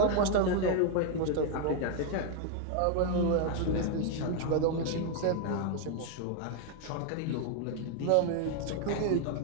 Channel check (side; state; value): both; different; correlation 0.00